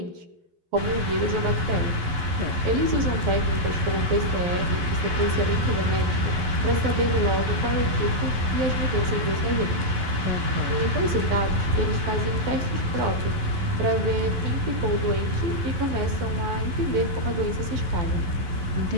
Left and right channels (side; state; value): left; late; 11 ms